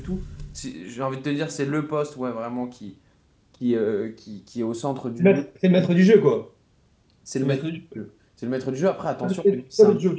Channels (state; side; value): identical; both; correlation 1.00